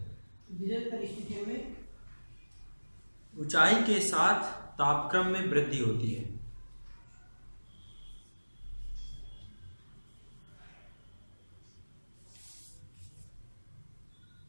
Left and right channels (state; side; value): inverted; both; correlation -1.00